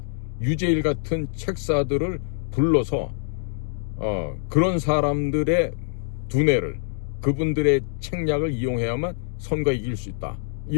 유재일 같은 책사들을 불러서 그런 사람들의 두뇌를, 그분들의 책략을 이용해야만 선거에 이길 수 있다,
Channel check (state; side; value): silent; right; digital silence